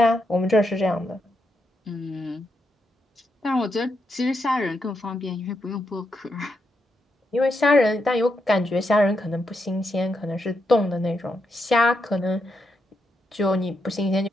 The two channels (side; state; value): both; normal; correlation 0.82